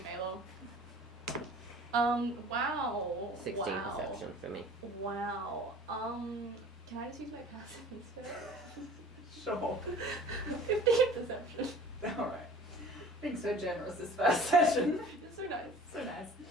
Melo. Wow. 16 wow. perception for me. Wow. Can I just use my passive instead? Sure. 15 perception. All right. Being so generous this first session. It's so nice. So nice.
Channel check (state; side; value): normal; both; correlation 0.45